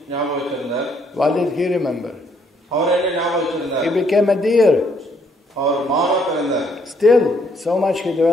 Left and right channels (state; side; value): normal; both; correlation 0.69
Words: ஞாபகம் வச்சிருந்தார். What did he remember? அவர் என்ன ஞாபகம் வச்சிருந்தார்? He became a deer. அவர் மானா பிறந்தார். Still, so much he